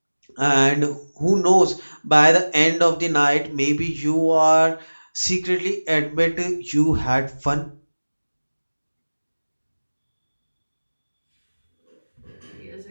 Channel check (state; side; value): inverted; both; correlation -1.00